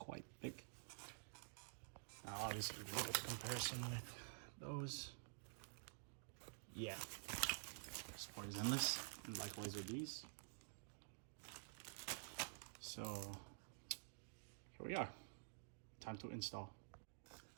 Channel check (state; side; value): silent; left; digital silence